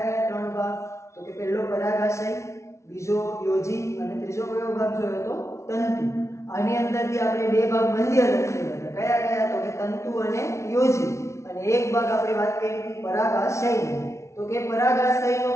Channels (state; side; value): late; right; 0.13 ms